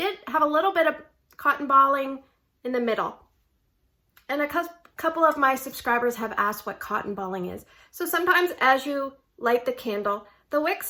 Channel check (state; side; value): identical; both; correlation 1.00